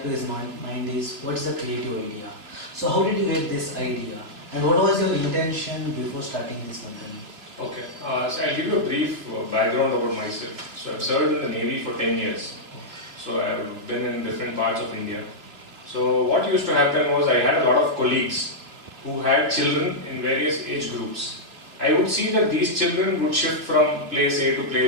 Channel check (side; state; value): left; late; 2.7 ms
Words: to his mind is what's the creative idea. So how did you get this idea and what was your intention before starting this company? Okay, so I'll give you a brief background about myself. So I've served in the Navy for 10 years. So I've been in different parts of India. So what used to happen was I had a lot of colleagues who had children in various age groups. I would see that these children would shift from place A to